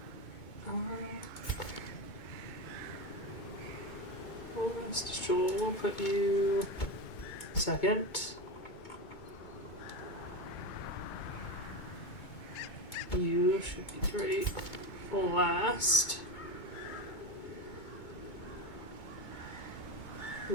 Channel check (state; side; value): late; right; 2.2 ms